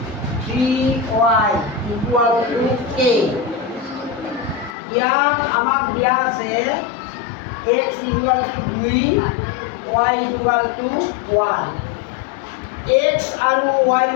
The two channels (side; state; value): right; drops out; at 4.8 s